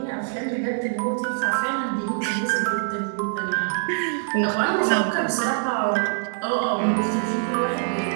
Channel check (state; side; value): silent; left; 62 dB below the other